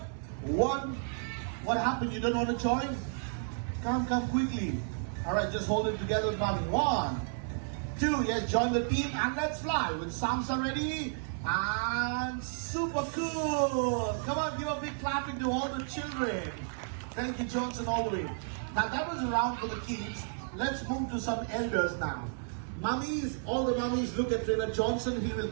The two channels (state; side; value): silent; left; 56 dB below the other